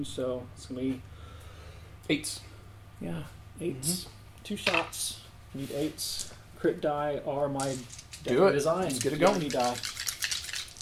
so it's going to be 8s. Yeah, 8s. 2 shots. Need 8s. Crit die are my design. Let's get it going. Die.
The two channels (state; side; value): identical; both; correlation 1.00